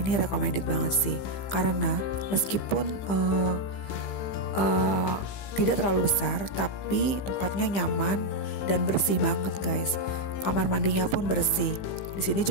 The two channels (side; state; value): right; late; 15 ms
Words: recommended banget sih. Karena meskipun tidak terlalu besar, tapi tempatnya nyaman dan bersih banget guys. Kamar mandinya pun bersih. Di sini